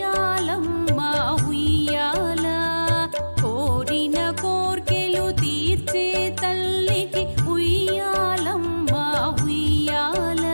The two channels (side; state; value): both; inverted; correlation -1.00